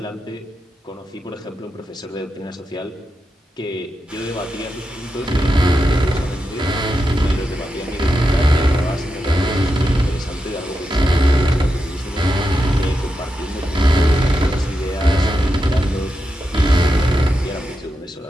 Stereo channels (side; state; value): both; normal; correlation 0.87